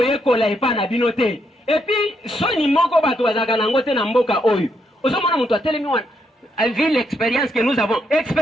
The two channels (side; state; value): both; normal; correlation 0.77